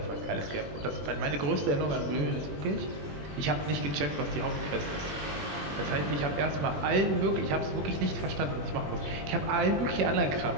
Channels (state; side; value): late; left; 21 ms